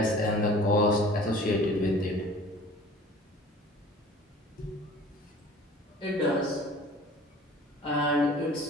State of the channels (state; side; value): normal; both; correlation 0.46